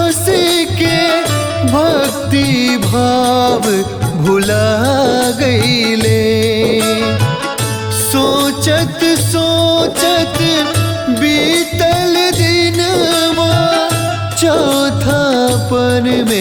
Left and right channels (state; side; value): identical; both; correlation 1.00